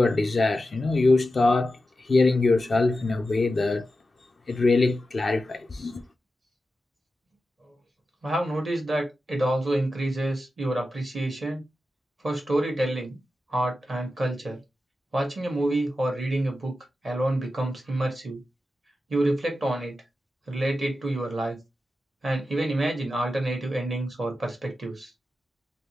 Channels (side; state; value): both; normal; correlation 0.91